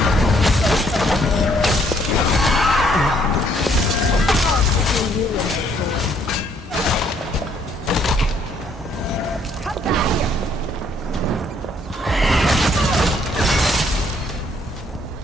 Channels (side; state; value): both; normal; correlation 0.66